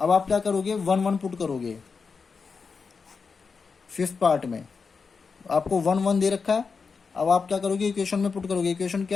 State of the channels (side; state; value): right; quieter; 5.1 dB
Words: आप क्या करोगे, 1 1 पुट करोगे फिफ्थ पार्ट में, आपको 1 1 दे रखा है। अब आप क्या करोगे, इक्वेशन में पुट करोगे। इक्वेशन